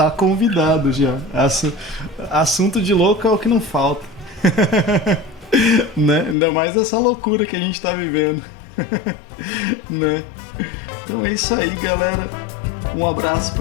convidado já. Assunto de louco é o que não falta. Né? Ainda mais essa loucura que a gente tá vivendo. Né? Então é isso aí, galera. Um abraço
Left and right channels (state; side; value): drops out; right; at 6.4 s